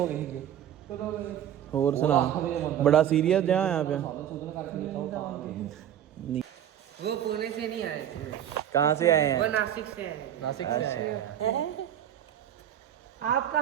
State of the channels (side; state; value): left; quieter; 10.5 dB